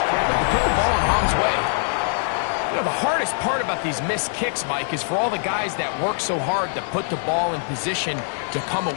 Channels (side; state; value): right; silent; 58 dB below the other